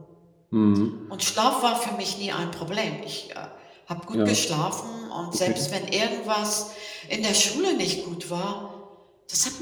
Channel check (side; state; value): both; identical; correlation 1.00